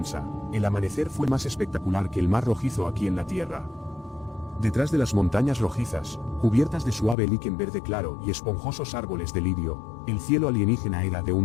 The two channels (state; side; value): drops out; right; at 7.2 s